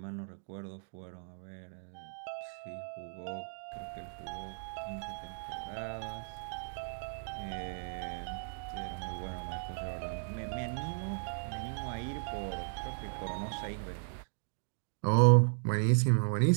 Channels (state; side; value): silent; left; digital silence